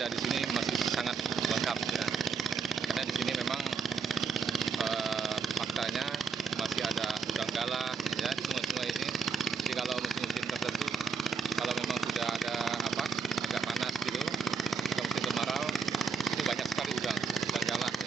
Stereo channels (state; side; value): quieter; left; 5.4 dB